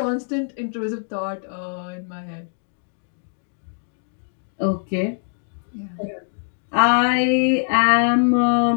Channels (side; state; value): right; silent; digital silence